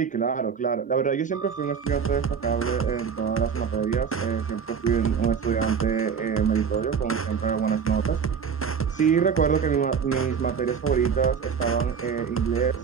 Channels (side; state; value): left; quieter; 6.6 dB